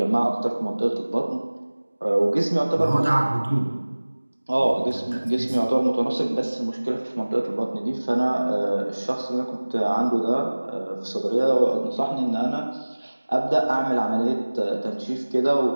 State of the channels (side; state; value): both; inverted; correlation -1.00